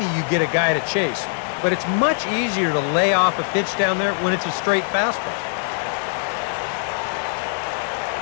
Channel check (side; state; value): right; silent; digital silence